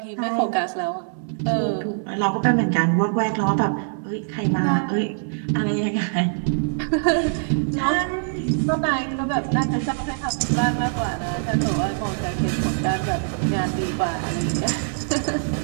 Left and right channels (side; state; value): left; silent; 63 dB below the other